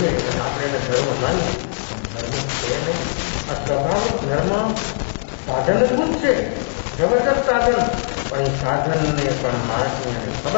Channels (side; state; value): right; silent; digital silence